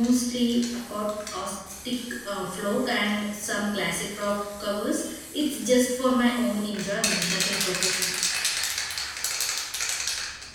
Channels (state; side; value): identical; both; correlation 1.00